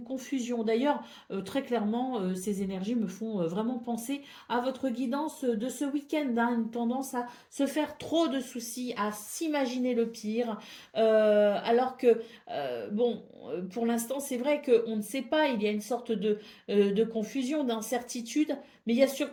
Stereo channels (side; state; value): both; identical; correlation 1.00